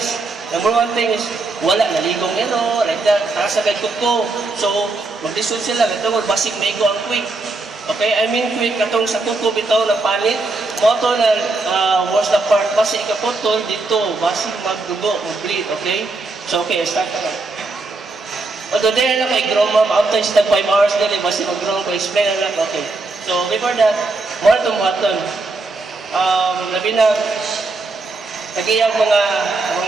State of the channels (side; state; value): left; quieter; 3.4 dB